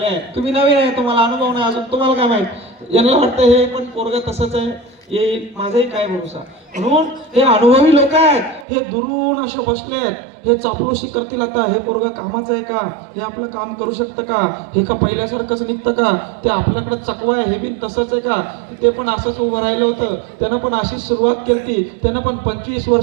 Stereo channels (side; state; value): left; drops out; at 8.7 s